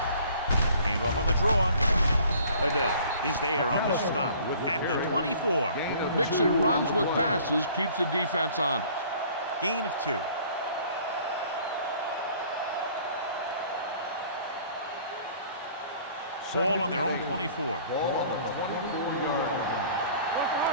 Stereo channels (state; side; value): inverted; both; correlation -0.53